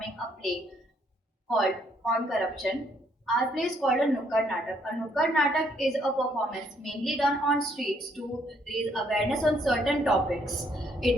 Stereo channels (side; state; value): both; normal; correlation 0.69